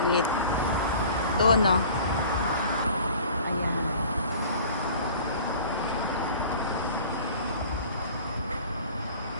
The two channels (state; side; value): inverted; both; correlation -0.45